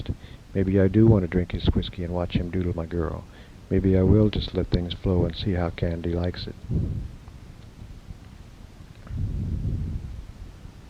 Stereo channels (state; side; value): identical; both; correlation 1.00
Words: Maybe I do want to drink his whiskey and watch him doodle my girl. Maybe I will just let things flow and see how Candy likes it.